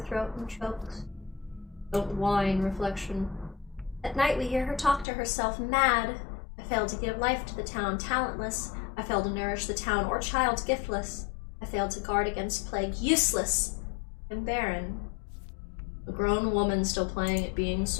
and chokes. Don't whine, reflection. At night we hear her talk to herself, mad. I failed to give life to the town, talentless. I failed to nourish the town or child, giftless. I failed to guard against plague, useless and barren. A grown woman still playing at being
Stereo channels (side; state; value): right; drops out; at 5.1 s